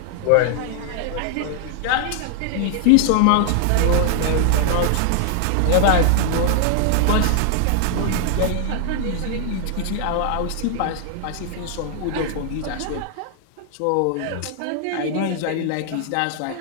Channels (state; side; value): different; both; correlation 0.00